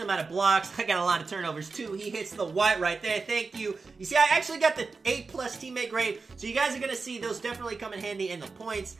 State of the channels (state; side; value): quieter; left; 4.3 dB